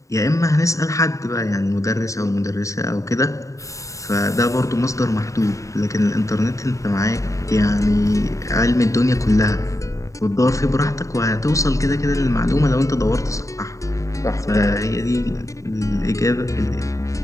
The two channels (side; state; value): right; late; 0.16 ms